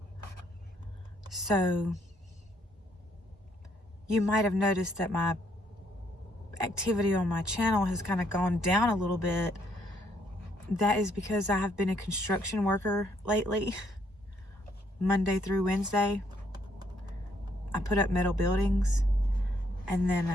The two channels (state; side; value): normal; both; correlation 0.70